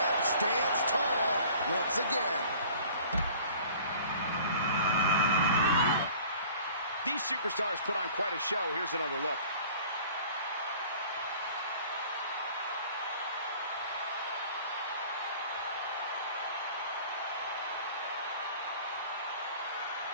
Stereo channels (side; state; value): both; inverted; correlation -0.48